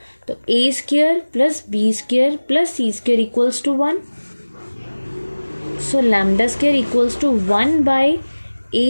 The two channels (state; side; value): inverted; both; correlation -1.00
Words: तो A² plus B² plus C² equals to 1। So lambda square equals to 1 by